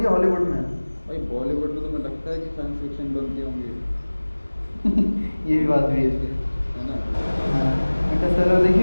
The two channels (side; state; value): both; inverted; correlation -1.00